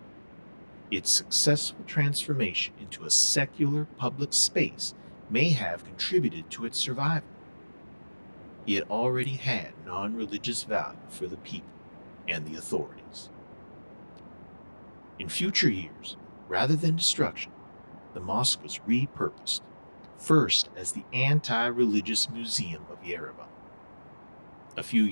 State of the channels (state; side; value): inverted; both; correlation -1.00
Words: Its successful transformation into a secular public space may have contributed to its survival. It already had non-religious value for the people and the authorities. In future years, rather than destruction, the mosque was repurposed, first as the Anti-Religious Museum of Yerevan. A few